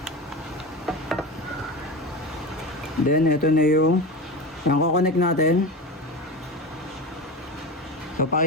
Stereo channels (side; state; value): both; normal; correlation 0.25